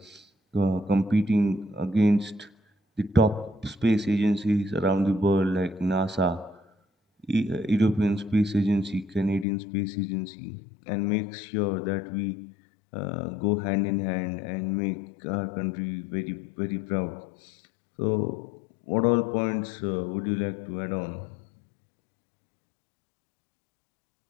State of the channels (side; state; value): right; drops out; at 9.5 s